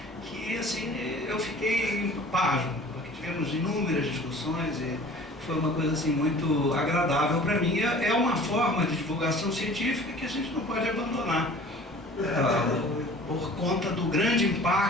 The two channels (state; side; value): normal; both; correlation 0.46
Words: Que assim, eu fiquei pasmo, porque tivemos inúmeras discussões e foi uma coisa assim muito agradável para mim. É uma forma de divulgação científica que a gente não pode abandonar. por conta do grande